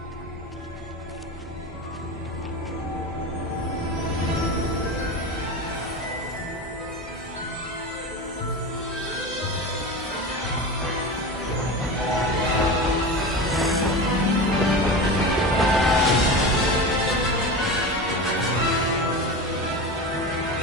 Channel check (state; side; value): normal; both; correlation 0.26